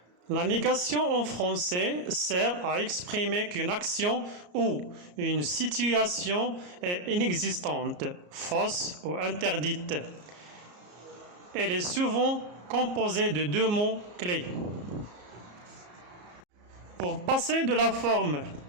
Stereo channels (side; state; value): left; late; 34 ms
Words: La négation en français sert à exprimer qu'une action ou une situation est inexistante, fausse ou interdite. Elle est souvent composée de deux mots clés. Pour passer de la forme